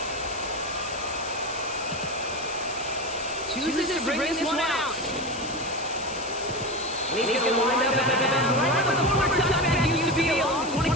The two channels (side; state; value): left; noise; hiss, 12 dB below the sound